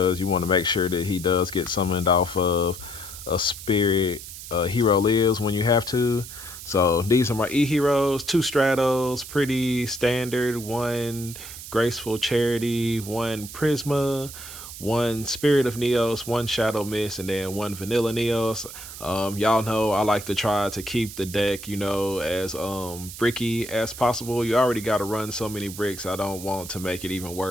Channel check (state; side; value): noise; right; hiss, 12 dB below the sound